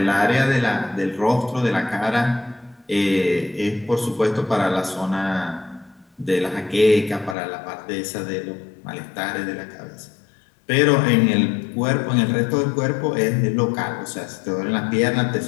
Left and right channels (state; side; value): drops out; right; at 7.4 s